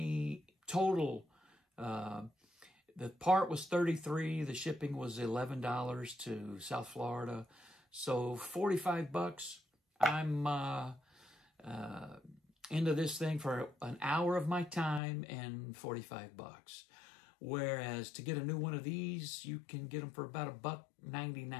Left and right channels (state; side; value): drops out; right; at 15.0 s